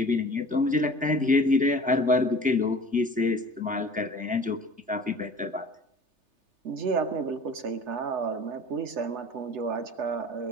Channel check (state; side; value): late; left; 3.3 ms